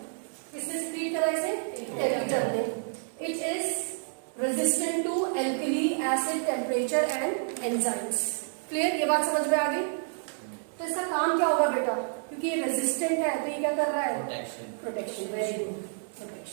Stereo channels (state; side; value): silent; left; digital silence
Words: किसने सिक्रीट करा इसे, टेपिटम ने. It is resistant to alkali, acid, temperature and enzymes. Clear, ये बात समझ में आ गई. तो इसका काम क्या होगा बेटा, क्योंकि ये रेजिस्टेंट है तो ये क्या कर रहा है, प्रोटेक्शन. Very good,